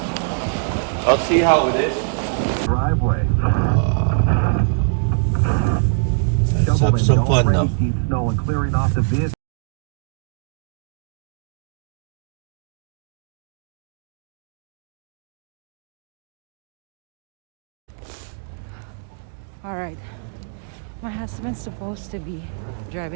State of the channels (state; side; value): silent; left; digital silence